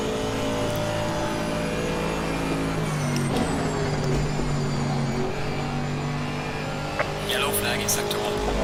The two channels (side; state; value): both; identical; correlation 1.00